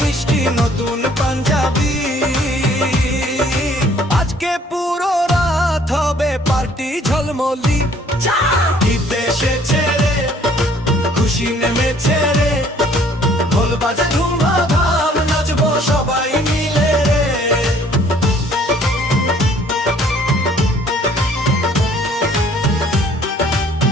নতুন পাঞ্জাবি, আজকে পুরো রাত হবে পার্টি ঝলমলি। ঈদ এসেছে রে, খুশি নেমেছে রে, ঢোল বাজে ধুমধাম নাচবো সবাই মিলে রে।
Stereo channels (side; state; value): both; normal; correlation 0.58